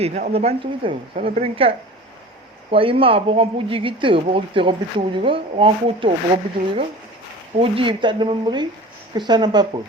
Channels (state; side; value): normal; both; correlation 0.38